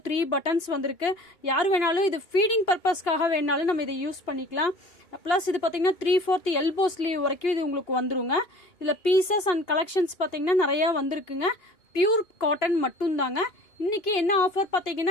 3 பட்டன்ஸ் வந்திருக்கு. யார் வேணாலும் இது ஃபீடிங் பர்பஸ்க்காக வேணாலும் நம்ம இதை யூஸ் பண்ணிக்கலாம். ப்ளஸ் இது பார்த்தீங்கன்னா 3/4 எல்போ ஸ்லீவ் வரைக்கும் இது உங்களுக்கு வந்துருங்க. இதில் பீசஸ் அண்ட் கலெக்ஷன்ஸ் பார்த்தீங்கன்னா நிறைய வந்திருக்குங்க. பியூர் காட்டன் மட்டும் தாங்க. இன்னைக்கு என்ன ஆஃபர்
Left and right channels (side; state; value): right; late; 2.9 ms